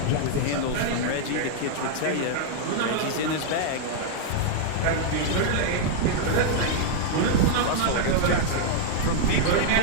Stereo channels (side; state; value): both; different; correlation -0.01